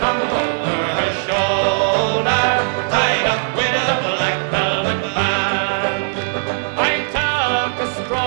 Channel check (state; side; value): silent; left; digital silence